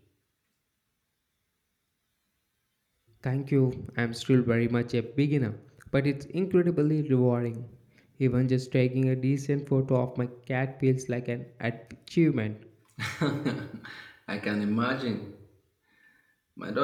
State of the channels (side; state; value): both; identical; correlation 1.00